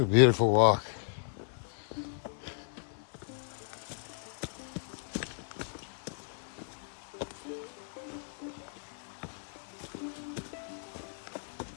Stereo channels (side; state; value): right; silent; digital silence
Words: a beautiful walk.